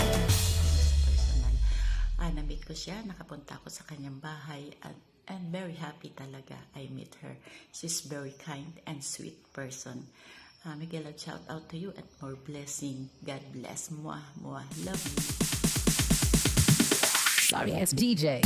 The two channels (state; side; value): identical; both; correlation 1.00